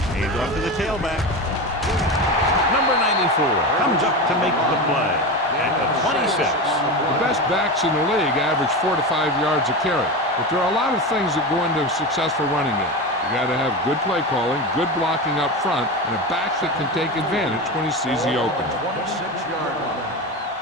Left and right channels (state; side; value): normal; both; correlation 0.22